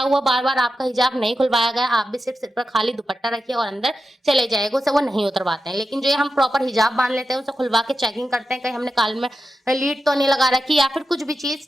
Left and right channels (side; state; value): both; normal; correlation 0.90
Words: हुआ, बार बार आपका हिजाब नहीं खुलवाया गया। आप भी सिर्फ सिर पर खाली दुपट्टा रखिए और अंदर चले जाएगा, उसे वो नहीं उतरवाते हैं। लेकिन जो ये हम प्रॉपर हिजाब बांध लेते हैं, उसे खुलवा के चेकिंग करते हैं, कहीं हमने कान में लीड तो नहीं लगा रखी या फिर कुछ भी चीज,